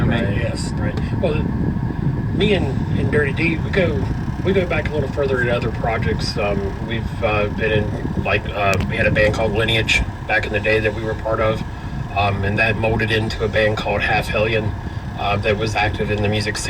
Right, yes. Right. Well, me and Dirty D, we go back a little further in other projects. We've been in, we had a band called Lineage back in the day that we were part of, and that molded into a band called Half Hellion that was active in the music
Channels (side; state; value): both; identical; correlation 1.00